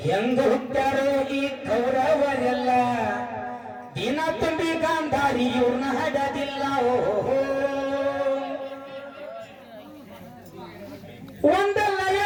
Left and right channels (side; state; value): both; identical; correlation 1.00